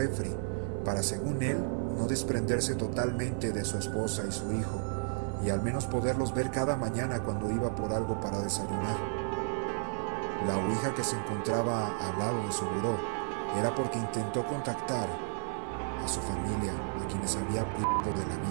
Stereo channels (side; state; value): left; silent; 56 dB below the other